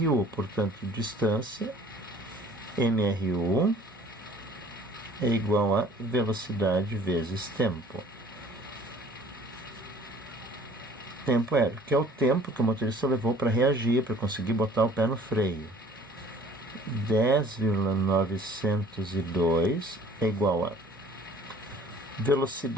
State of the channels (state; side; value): normal; both; correlation 0.52